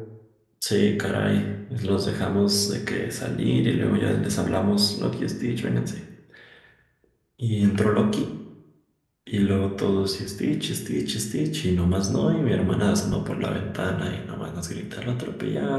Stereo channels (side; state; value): both; identical; correlation 1.00